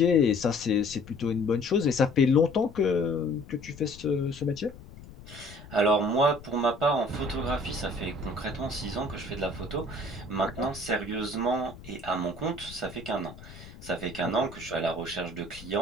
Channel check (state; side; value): noise; left; rumble, 17 dB below the sound